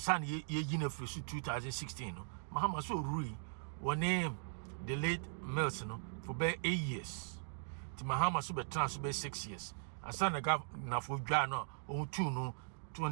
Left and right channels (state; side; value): silent; left; digital silence